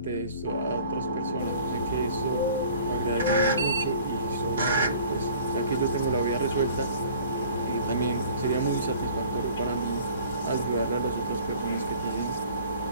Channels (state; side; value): inverted; both; correlation -0.50